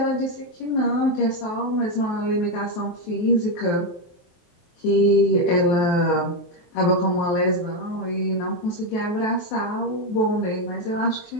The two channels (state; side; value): late; right; 23 ms